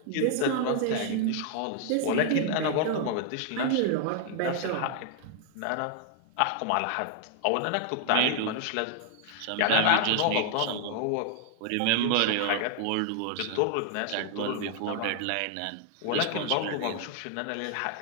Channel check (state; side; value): different; both; correlation 0.00